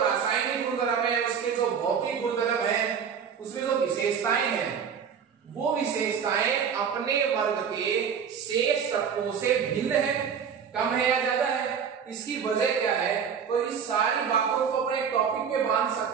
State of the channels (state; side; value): quieter; left; 7.2 dB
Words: गुणधर्म है, उसके जो भौतिक गुणधर्म है, उसमें जो विशेषताएं हैं, वो विशेषताएं अपने वर्ग के शेष तत्वों से भिन्न है, कम है या ज्यादा है। इसकी वजह क्या है? तो इस सारी बातों को अपने टॉपिक में बांध